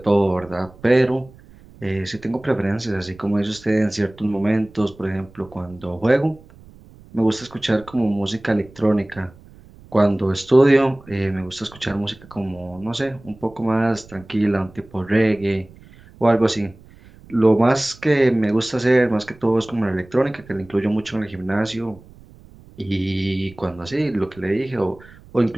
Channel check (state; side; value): noise; right; rumble, 23 dB below the sound